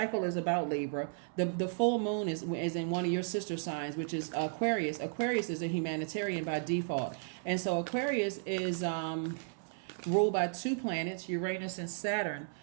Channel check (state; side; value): silent; left; 55 dB below the other